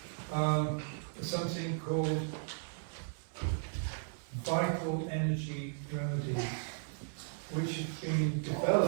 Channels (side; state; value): left; silent; 54 dB below the other